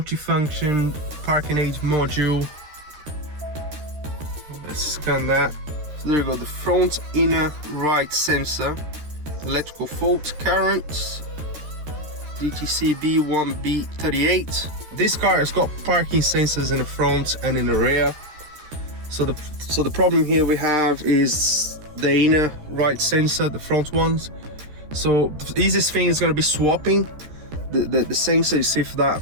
parking aid module. Let's scan that. So there you go, the front inner right sensor, electrical fault, current, DTC B1B38. This car has got parking sensors in the front and in the rear. So the problem here we have is the inner right sensor, the front ones. So the easiest thing is going to be swapping the sensor, see if that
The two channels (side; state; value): left; late; 13 ms